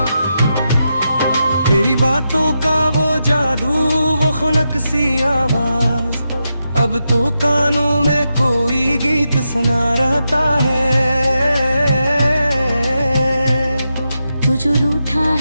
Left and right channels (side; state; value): both; inverted; correlation -0.86